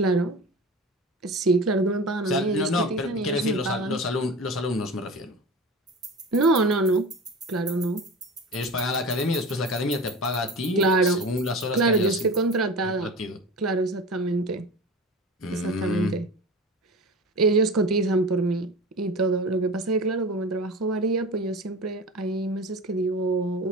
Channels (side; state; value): both; normal; correlation 0.33